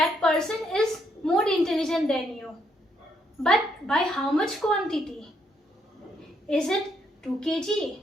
person is more intelligent than you. But by how much quantity? Is it 2 kg,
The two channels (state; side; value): normal; both; correlation 0.74